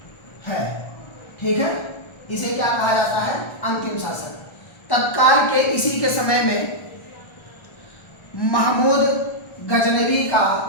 है। ठीक है, इसे क्या कहा जाता है? अंतिम शासक। तत्काल के इसी के समय में महमूद गजनवी का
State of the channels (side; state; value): right; late; 1.3 ms